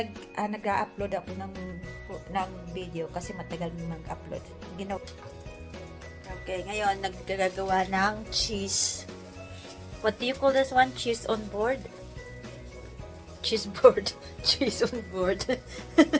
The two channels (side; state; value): both; identical; correlation 1.00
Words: ako ng video kasi matagal mag-upload. Okay, ngayon naggagawa ng cheese. What do you call this one? Cheese on board? Cheese board. Cheese on board.